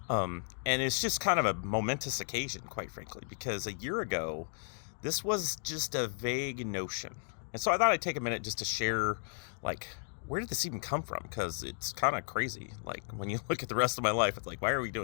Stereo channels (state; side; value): silent; right; 55 dB below the other